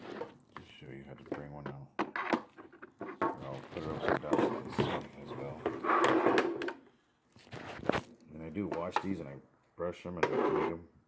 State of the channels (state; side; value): identical; both; correlation 1.00